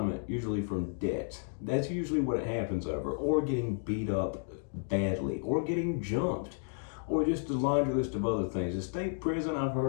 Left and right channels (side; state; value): right; silent; 56 dB below the other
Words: usually from debts. That's usually what it happens over, or getting beat up badly, or getting jumped, or just a laundry list of other things. The state prison, I've